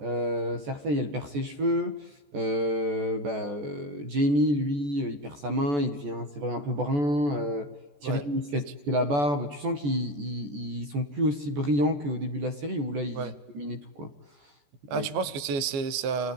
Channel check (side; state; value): left; late; 14 ms